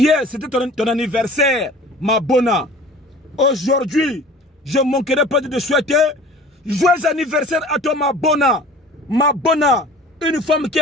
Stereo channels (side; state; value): both; normal; correlation 0.44